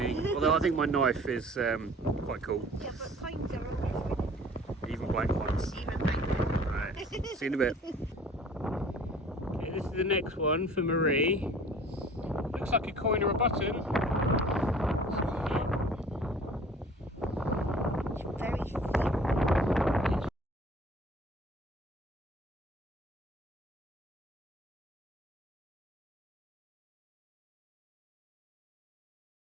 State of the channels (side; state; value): both; normal; correlation 0.49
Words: Although I think my knife is quite cool. Yeah, but coins are always winning. Even blank ones. Even blank ones. Right, see you in a bit. Okay, this is the next one for Marie. Looks like a coin or a button. It's very thin.